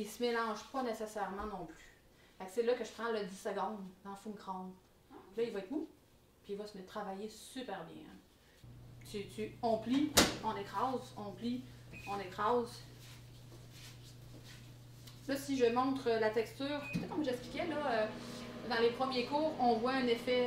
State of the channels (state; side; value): identical; both; correlation 1.00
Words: il se mélange pas nécessairement non plus. Fait que c'est là que je prends le 10 secondes dans le four micro-ondes. Là, il va être mou. Puis il va se mettre travailler super bien. On plie, on écrase, on plie, on écrase. Là, si je montre la texture, peut-être comme j'expliquais, là, dans les premiers cours, on voit un